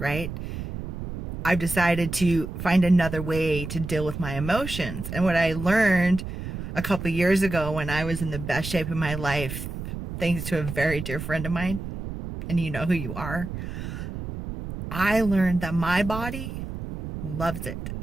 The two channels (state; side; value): noise; right; rumble, 7 dB below the sound